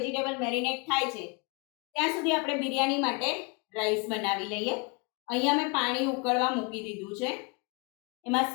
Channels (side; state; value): right; quieter; 30.5 dB